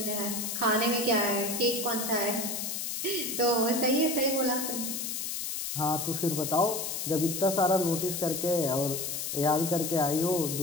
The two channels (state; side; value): noise; left; hiss, 3 dB below the sound